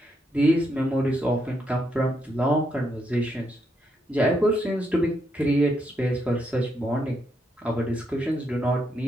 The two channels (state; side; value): normal; both; correlation 0.78